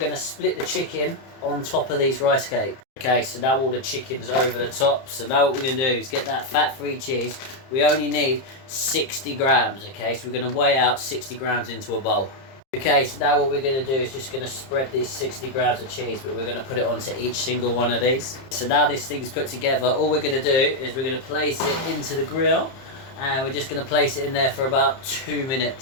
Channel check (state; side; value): late; right; 30 ms